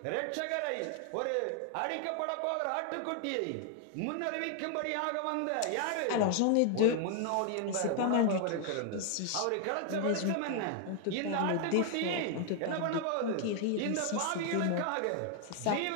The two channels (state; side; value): different; both; correlation 0.00